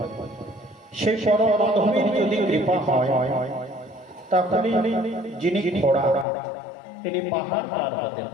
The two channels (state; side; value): drops out; right; at 6.2 s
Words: সেই পরম মাধবের যদি কৃপা হয় তাহলে যিনি ঘোড়া তিনি পাহাড় পার হতে